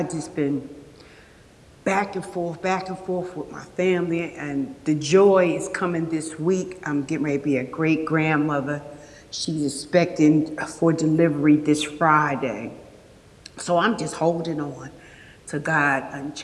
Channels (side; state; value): both; identical; correlation 1.00